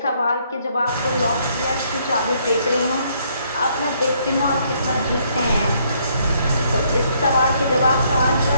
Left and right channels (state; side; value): inverted; both; correlation -0.69